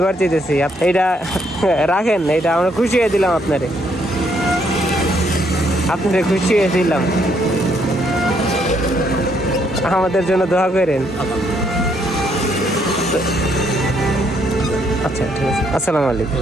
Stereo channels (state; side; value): normal; both; correlation 0.71